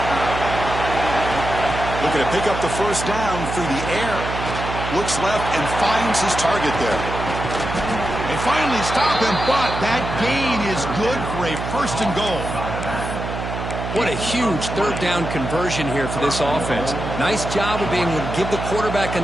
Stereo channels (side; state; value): right; noise; hum, 6 dB below the sound